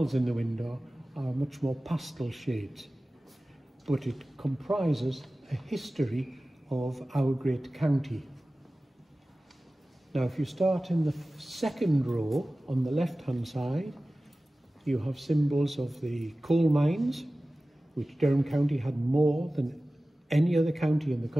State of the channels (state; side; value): normal; both; correlation 0.96